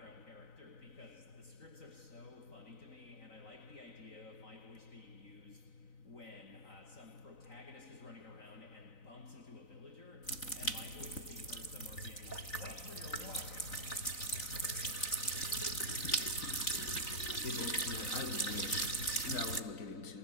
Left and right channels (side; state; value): right; late; 3.9 ms